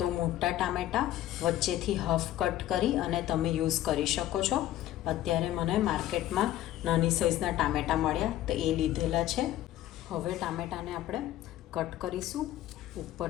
મોટા ટામેટાં વચ્ચેથી હાફ કટ કરી અને તમે યુઝ કરી શકો છો. અત્યારે મને માર્કેટમાં નાની સાઇઝના ટામેટાં મળ્યા તો એ લીધેલા છે. હવે ટામેટાને આપણે કટ કરીશું.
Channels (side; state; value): right; quieter; 13.6 dB